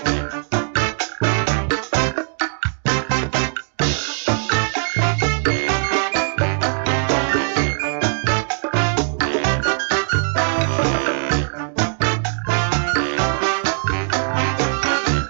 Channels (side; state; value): left; silent; 66 dB below the other